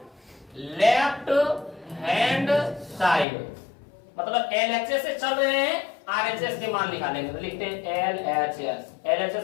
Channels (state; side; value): drops out; right; at 3.2 s